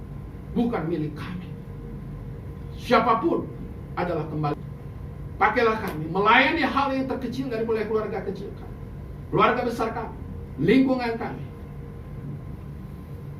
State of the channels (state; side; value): identical; both; correlation 1.00